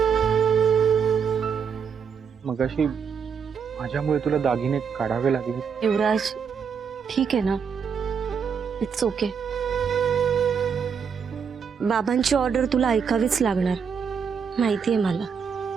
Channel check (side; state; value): left; quieter; 6.6 dB